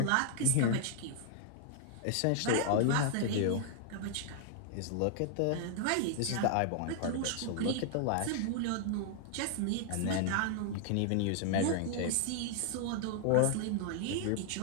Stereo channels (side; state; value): both; different; correlation -0.01